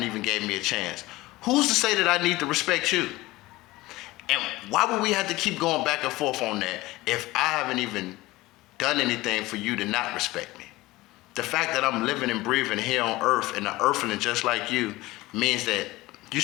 even gave me a chance, who's to say that I need to respect you? And why would we have to keep going back and forth on that if I haven't even done anything for you to not respect me? The fact that I'm living and breathing here on earth and an earthling just like you means that you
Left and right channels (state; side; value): quieter; right; 19.2 dB